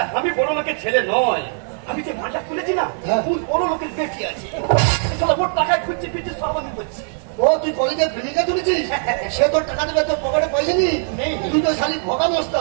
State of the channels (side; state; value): left; silent; 55 dB below the other